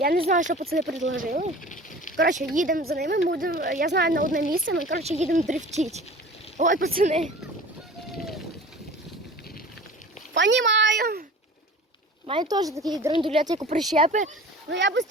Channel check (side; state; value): both; normal; correlation 0.42